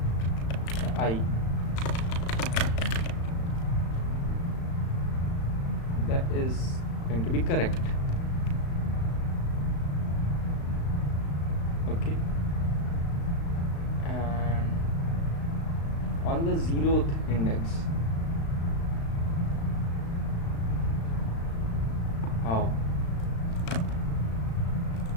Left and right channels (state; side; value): late; right; 35 ms